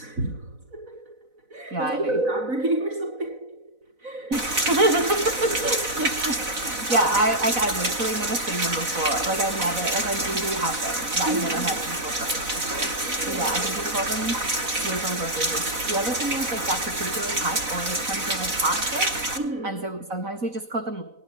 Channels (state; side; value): late; left; 4.0 ms